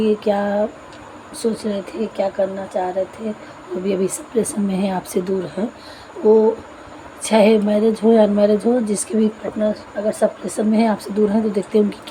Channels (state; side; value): identical; both; correlation 1.00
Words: क्या सोच रहे थे, क्या करना चाह रहे थे। वो भी अभी सेपरेशन में है, आपसे दूर है। वो चाहे मैरिज हो या अनमैरिज हो, जिसके भी पार्टनर अगर सेपरेशन में है, आपसे दूर हैं, तो देखते हैं उनकी